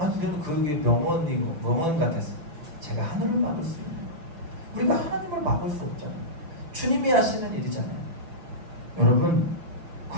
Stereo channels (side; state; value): left; late; 6.0 ms